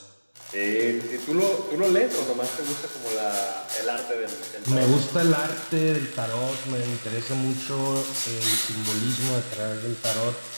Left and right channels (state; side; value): inverted; both; correlation -1.00